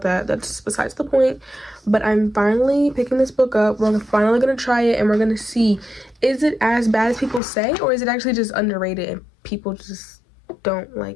that. That's besides the point. But I'm finally picking this book up. We're finally going to try it, and we're going to see, is it as bad as people say, or is it actually just underrated and people just don't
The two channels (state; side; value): drops out; right; at 7.4 s